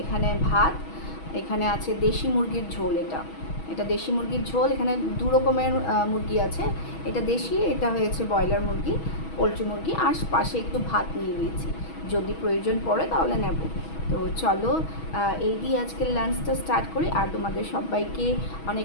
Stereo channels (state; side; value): late; right; 6.2 ms